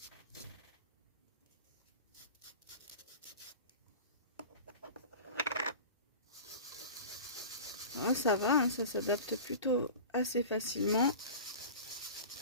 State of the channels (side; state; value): both; inverted; correlation -0.35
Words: Ah, ça va, hein, ça s'adapte plutôt assez facilement.